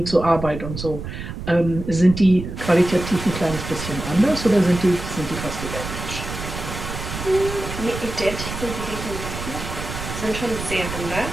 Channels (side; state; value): right; noise; rumble, 8 dB below the sound